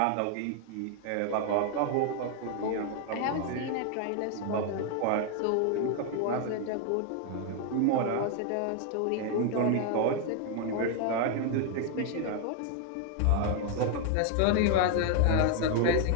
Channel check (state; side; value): different; both; correlation 0.00